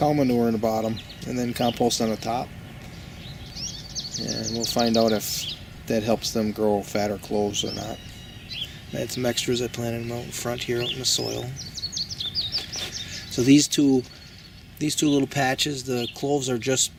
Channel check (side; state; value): both; identical; correlation 1.00